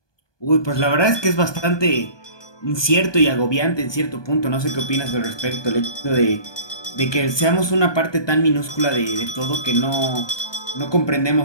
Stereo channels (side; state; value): right; late; 1.2 ms